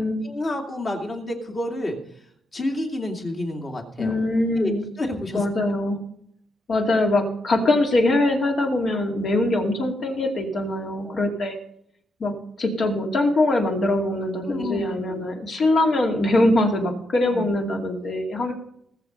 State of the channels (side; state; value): both; normal; correlation 0.81